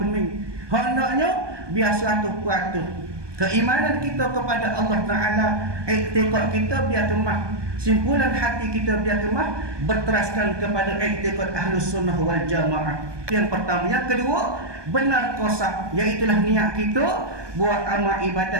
Hendaknya biasa 100%. Keimanan kita kepada Allah Ta'ala, i'tikad kita biar kemah, simpulan hati kita biar kemah berteraskan kepada i'tikad Ahlus Sunnah wal Jamaah. Yang pertama. Yang kedua, benar qasad, iaitulah niat kita buat amal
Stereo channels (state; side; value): late; left; 1.2 ms